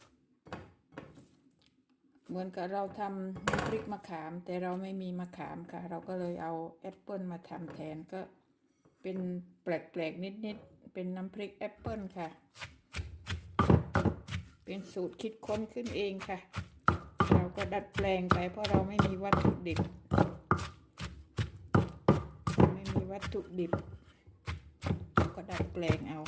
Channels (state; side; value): identical; both; correlation 1.00